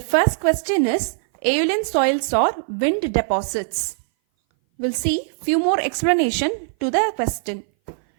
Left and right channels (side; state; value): left; silent; 59 dB below the other